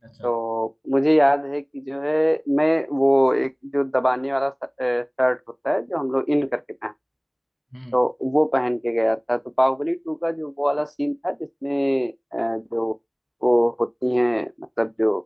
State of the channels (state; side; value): identical; both; correlation 1.00